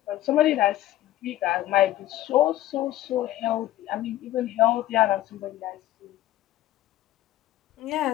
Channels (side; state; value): right; quieter; 14.3 dB